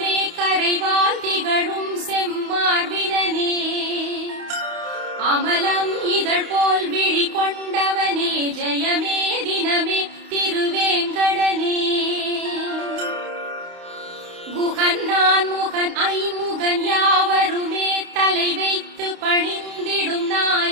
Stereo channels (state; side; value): late; left; 28 ms